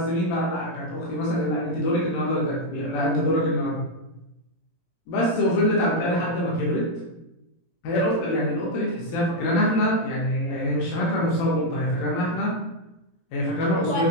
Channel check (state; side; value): late; right; 17 ms